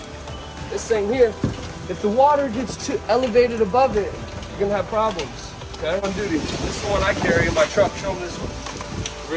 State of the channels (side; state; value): both; identical; correlation 1.00